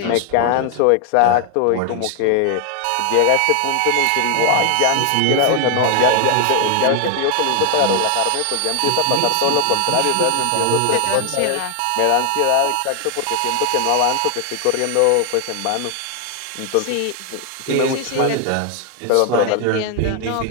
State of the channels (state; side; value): different; both; correlation 0.00